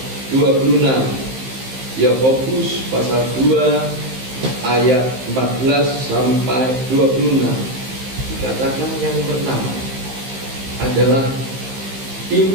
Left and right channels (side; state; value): left; late; 15 ms